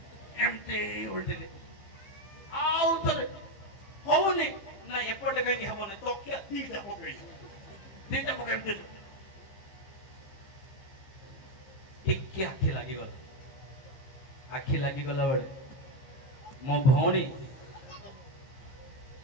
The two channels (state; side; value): late; right; 15 ms